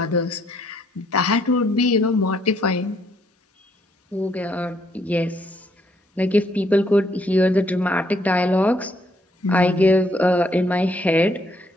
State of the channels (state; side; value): normal; both; correlation 0.70